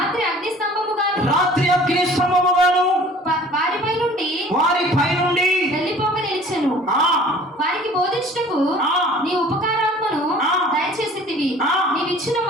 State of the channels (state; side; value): normal; both; correlation 0.49